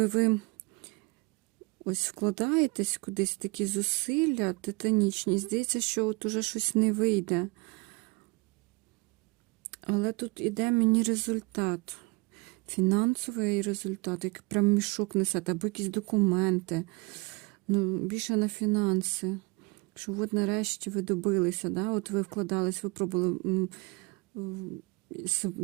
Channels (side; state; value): left; quieter; 26.5 dB